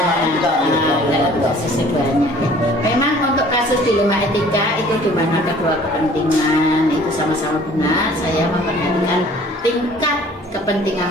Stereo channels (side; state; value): both; normal; correlation 0.52